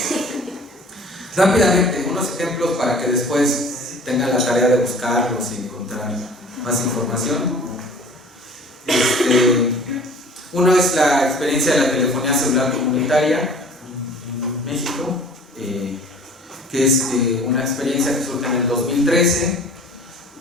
Rápidamente, unos ejemplos para que después tengan la tarea de buscarlos y encontrar más información. Uno es la experiencia de la telefonía celular comunitaria en México, que es una experiencia que surge en el 2013,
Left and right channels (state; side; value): normal; both; correlation 0.47